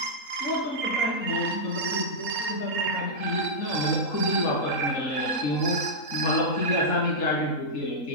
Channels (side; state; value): right; late; 3.8 ms